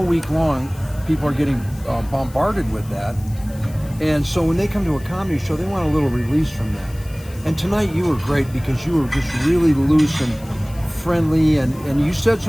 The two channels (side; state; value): left; noise; hiss, 22 dB below the sound